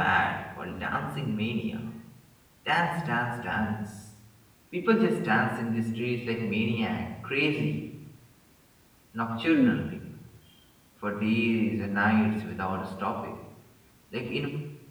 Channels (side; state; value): both; identical; correlation 1.00